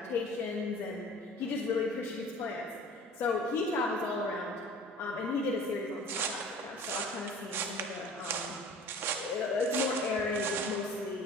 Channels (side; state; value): both; normal; correlation 0.44